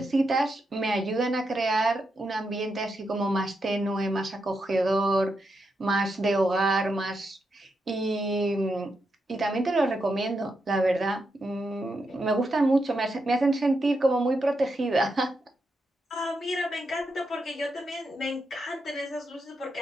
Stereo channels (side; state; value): both; normal; correlation 0.84